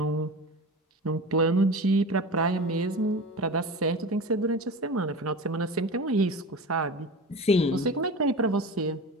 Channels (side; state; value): both; normal; correlation 0.31